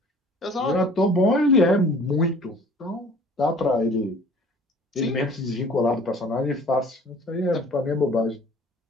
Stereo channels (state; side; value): normal; both; correlation 0.50